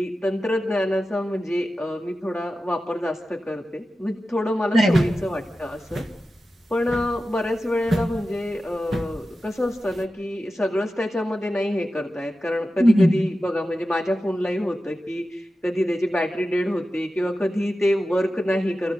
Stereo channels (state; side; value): normal; both; correlation 0.93